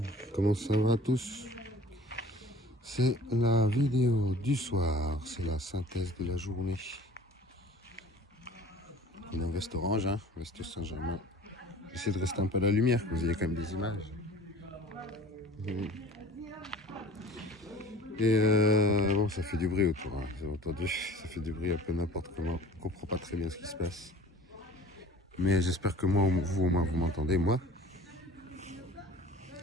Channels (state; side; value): normal; both; correlation 0.45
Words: comment ça va tous? C'est la vidéo du soir, c'est la synthèse de la journée. On est en veste orange, hein, veste Saint-Germain. J'essaie de rester un peu à la lumière, que vous ayez quand même des images. Et bon, ça fait du bruit autour, hein, vous avez entendu, ça fait du bruit un peu n'importe comment. On comprend pas très bien ce qui se passe. Mais j'espère que moi, vous au moins, vous m'entendez, moi.